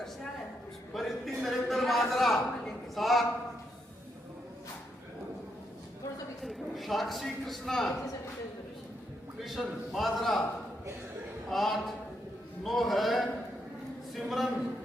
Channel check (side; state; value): both; normal; correlation 0.79